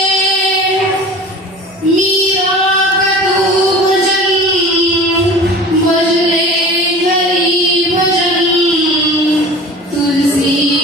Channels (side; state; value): both; normal; correlation 0.39